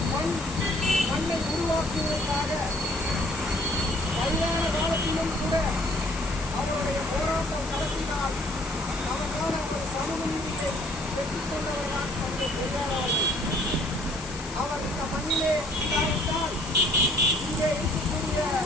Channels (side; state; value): left; noise; hiss, 13 dB below the sound